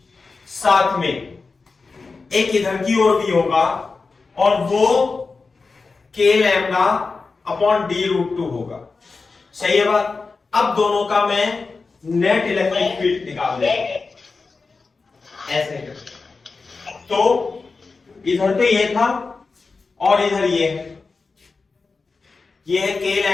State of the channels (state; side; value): quieter; right; 4.2 dB